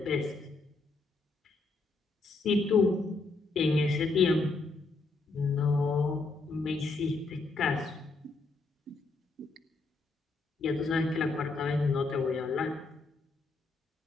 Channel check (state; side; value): quieter; right; 3.6 dB